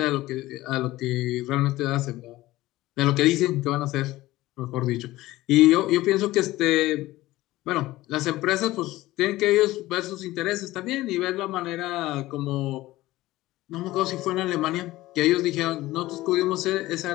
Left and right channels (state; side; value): quieter; right; 17.4 dB